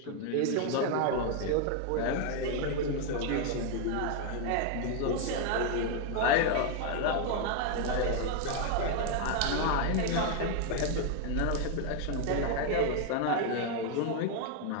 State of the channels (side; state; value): both; different; correlation 0.00